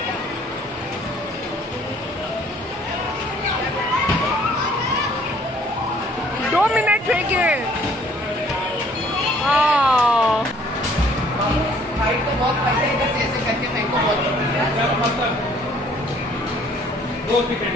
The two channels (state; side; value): normal; both; correlation 0.59